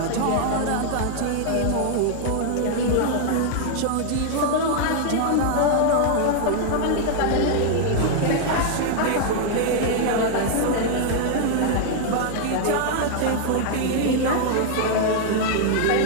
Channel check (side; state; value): both; different; correlation 0.00